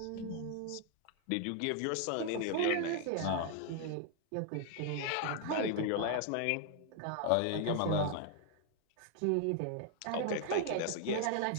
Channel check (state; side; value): different; both; correlation 0.00